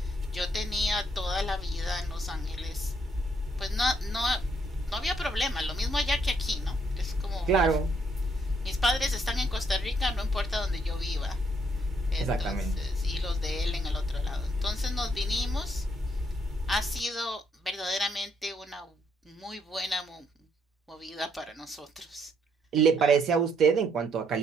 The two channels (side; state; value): both; normal; correlation 0.71